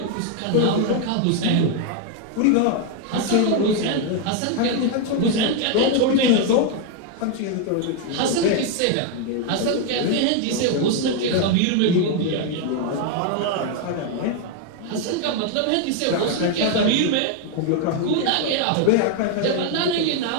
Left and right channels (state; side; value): different; both; correlation 0.00